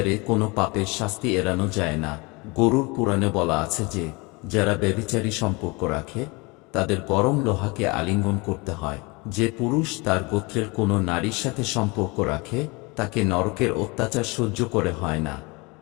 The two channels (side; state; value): right; quieter; 26.8 dB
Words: কোনো পাপের শাস্তি এড়ানো যায় না। গরুড় পুরাণে বলা আছে যে যারা ব্যভিচারী সম্পর্ক রাখে তাদের গরম লোহাকে আলিঙ্গন করতে হয়। যে পুরুষ তার গোত্রের কোনো নারীর সাথে সম্পর্ক রাখে তাকে নরকের অত্যাচার সহ্য করে হয় না